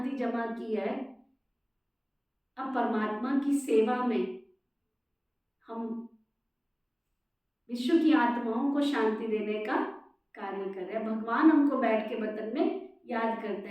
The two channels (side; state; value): both; identical; correlation 1.00